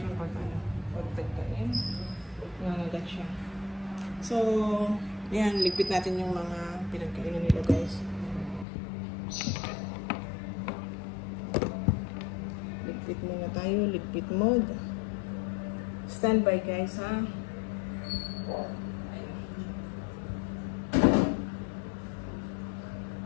pag tagkain. Nangagat siya. So, yan, ligpit natin yung mga pinagkainan nila guys. Ligpit muna tayo, ligpit mode. Stand by guys ha.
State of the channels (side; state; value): right; drops out; at 8.7 s